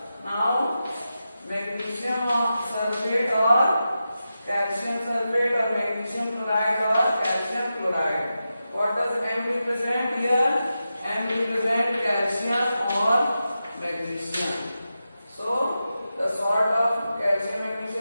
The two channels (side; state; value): both; inverted; correlation -0.90